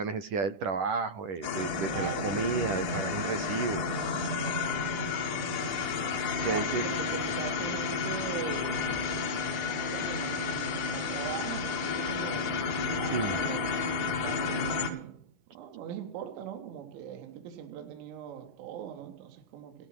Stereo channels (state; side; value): late; left; 9.6 ms